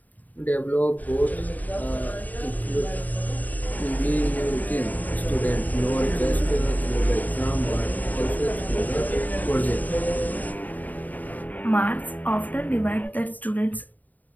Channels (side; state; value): right; late; 0.081 ms